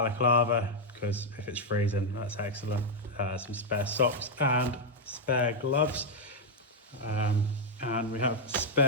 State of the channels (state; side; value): normal; both; correlation 0.00